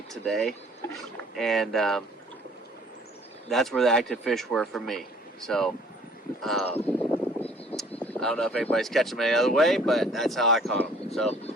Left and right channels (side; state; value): both; normal; correlation 0.55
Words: today, and that's where the active fish were for me. So I don't know if anybody's catching them any other way, but that's how I caught them. So